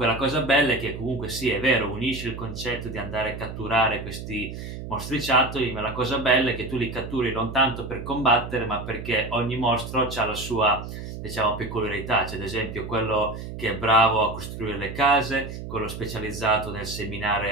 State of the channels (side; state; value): right; noise; hum, 9 dB below the sound